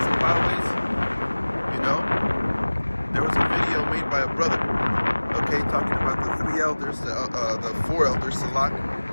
and byways. You know? There was a video made by a brother, okay, talking about the 3 elders, the 4 elders, Salak,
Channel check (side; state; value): both; inverted; correlation -1.00